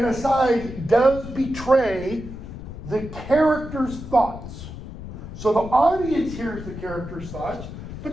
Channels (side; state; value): left; noise; rumble, 11 dB below the sound